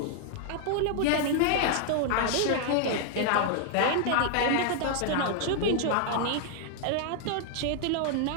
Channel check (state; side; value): different; both; correlation 0.00